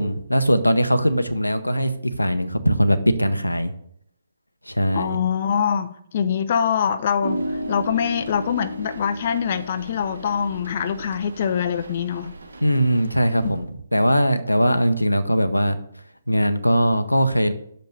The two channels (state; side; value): inverted; both; correlation -0.86